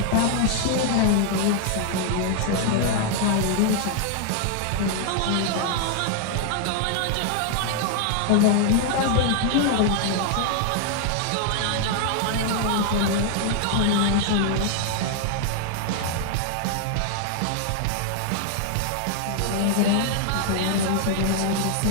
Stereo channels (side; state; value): both; different; correlation 0.00